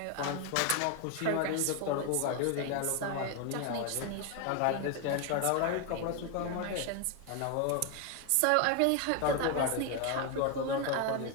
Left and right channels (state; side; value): different; both; correlation 0.01